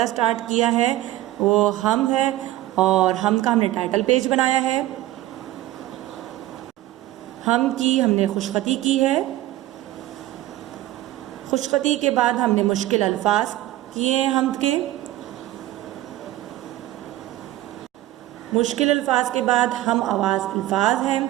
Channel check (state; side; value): quieter; left; 15.4 dB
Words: स्टार्ट किया है वो हम है और हम का हमने टाइटल पेज बनाया है। हम की हमने खुशखती की है। खुशखती के बाद हमने मुश्किल अल्फाज किए हैं हम के। मुश्किल अल्फाज के बाद हम आवाज़ अल्फाज हैं